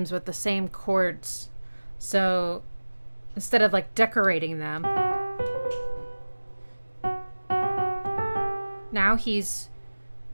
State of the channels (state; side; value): inverted; both; correlation -1.00